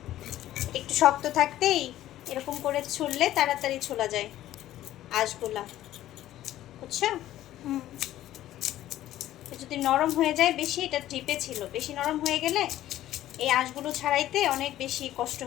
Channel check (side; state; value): right; quieter; 13.6 dB